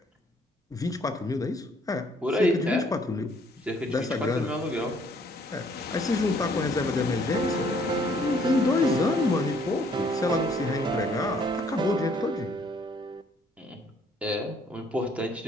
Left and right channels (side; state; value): both; normal; correlation 0.63